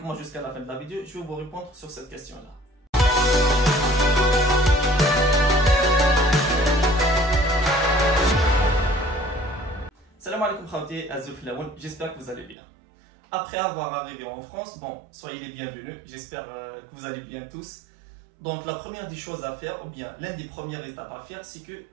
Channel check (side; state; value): left; drops out; at 12.6 s